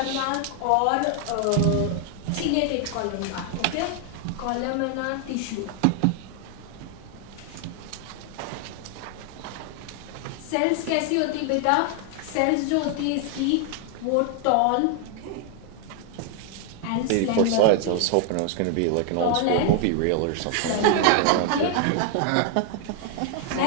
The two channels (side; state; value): both; different; correlation 0.00